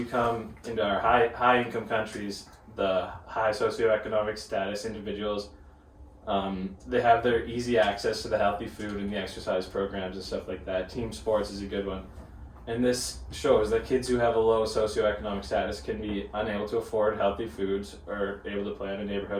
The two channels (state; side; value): identical; both; correlation 1.00